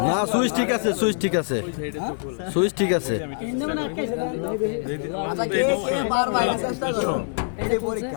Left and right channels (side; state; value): right; silent; digital silence